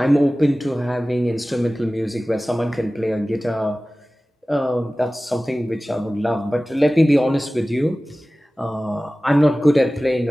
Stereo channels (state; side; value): normal; both; correlation 0.97